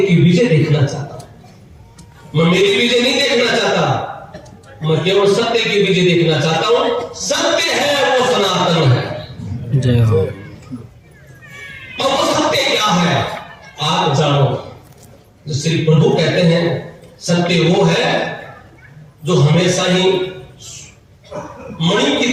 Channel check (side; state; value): both; identical; correlation 1.00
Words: विजय देखना चाहता हूं, मैं मेरी विजय नहीं देखना चाहता, मैं केवल सत्य की विजय देखना चाहता हूं। सत्य है वो सनातन है। जय हो। और वो सत्य क्या है आप जानो। जो श्री प्रभु कहते हैं सत्य वो है जो हमेशा ही मणि